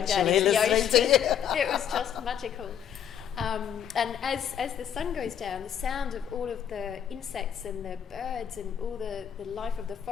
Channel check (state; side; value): quieter; right; 9.0 dB